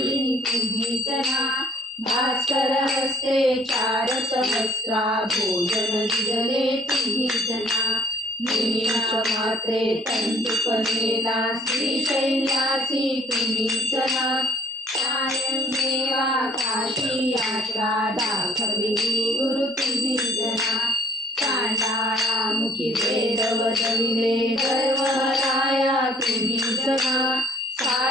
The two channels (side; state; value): both; normal; correlation 0.56